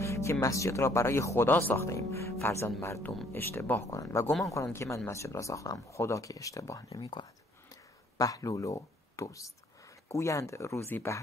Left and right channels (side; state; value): both; normal; correlation 0.62